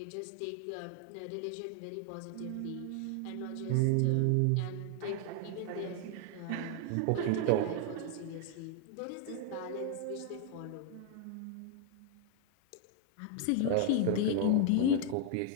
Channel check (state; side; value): different; both; correlation 0.00